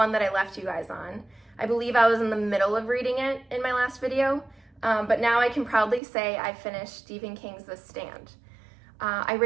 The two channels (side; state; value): left; drops out; at 6.0 s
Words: that I left you guys on. I believe I was in the middle of reading it in my last video, but now I can proudly say I finished Stephen King's The Stand. I